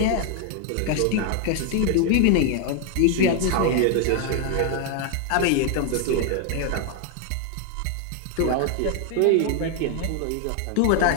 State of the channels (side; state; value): both; different; correlation 0.00